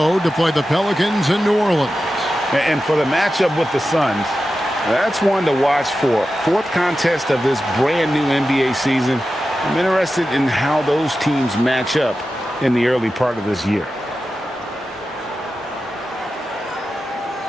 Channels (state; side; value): normal; both; correlation 0.92